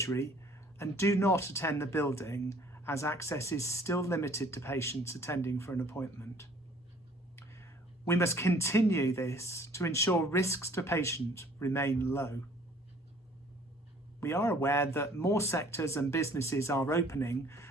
and do not attend the building as access is still limited to patients attending for an appointment. We must continue this to ensure risks to patients remain low. We are aware that more sectors and businesses are opening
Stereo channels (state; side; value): normal; both; correlation 0.55